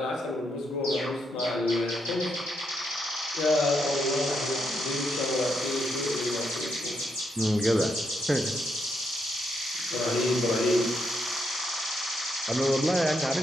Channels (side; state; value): both; normal; correlation 0.79